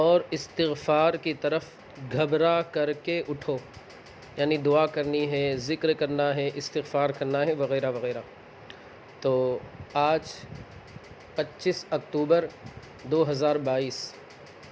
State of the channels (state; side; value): identical; both; correlation 1.00